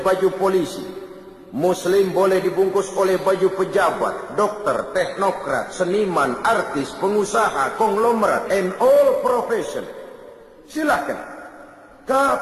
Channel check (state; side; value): identical; both; correlation 1.00